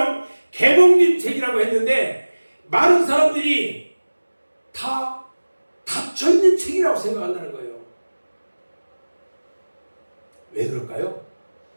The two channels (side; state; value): both; inverted; correlation -1.00